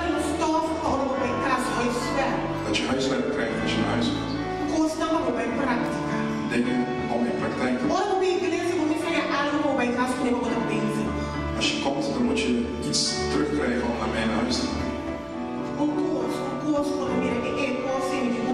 stof para o meu caso, o esfera. Dat je huiswerk krijgt als je naar huis gaat. Custa uma boa prática. Dingen om in praktijk te brengen. Ora, uma igreja, vamos fazer algo para o meu caso, que nem botar bini. Als je komt, dan moet je iets terugkrijgen om naar mij naar huis te brengen. Um curso para mim é possível que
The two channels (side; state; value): both; identical; correlation 1.00